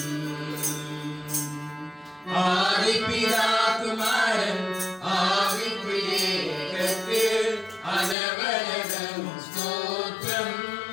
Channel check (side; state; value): right; drops out; at 8.2 s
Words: ஆதிபிதா குமாரன் ஆவி திரியேகக்கு அனவரதமும் ஸ்தோத்திரம்.